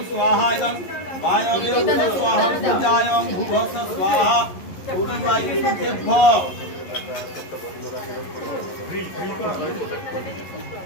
জং বায়বে ভূস্বাহা পূজায়ং ভূভস্য স্বাহা পূর্ণবাই সুতেভ্য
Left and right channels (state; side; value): late; right; 11 ms